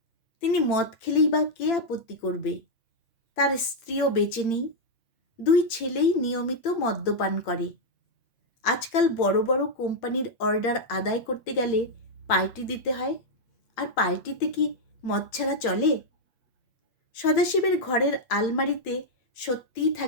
তিনি মদ খেলেই বা কে আপত্তি করবে? তার স্ত্রীও বেঁচে নেই। 2 ছেলেই নিয়মিত মদ্যপান করে। আজকাল বড় বড় কোম্পানির অর্ডার আদায় করতে গেলে পার্টি দিতে হয়, আর পার্টিতে কি মদ ছাড়া চলে? সদাশিবের ঘরের আলমারিতে সত্যিই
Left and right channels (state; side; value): late; right; 8.4 ms